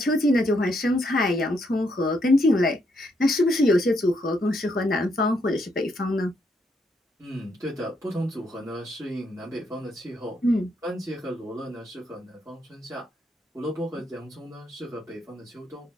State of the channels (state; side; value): normal; both; correlation 0.76